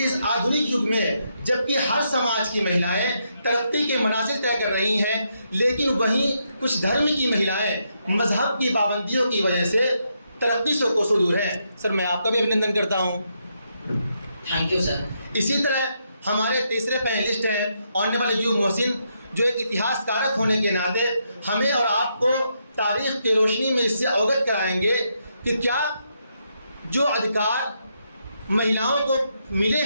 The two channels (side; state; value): both; inverted; correlation -0.79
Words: آدھنک یگ میں جبکہ ہر سماج کی مہیلائیں ترقی کے منازل طے کر رہی ہیں، لیکن وہیں کچھ دھرم کی مہیلائیں مذہب کی پابندیوں کی وجہ سے ترقی سے کوسوں دور ہیں۔ سر میں آپ کا بھی ابھیندن کرتا ہوں۔ Thank you sir. اسی طرح ہمارے تیسرے پینلسٹ ہیں آنریبل ایوب محسن، جو ایک اتہاس کارک ہونے کے ناطے ہمیں اور آپ کو تاریخ کی روشنی میں اس سے اوگت کرائیں گے کہ کیا جو ادھیکار مہیلاؤں کو ملے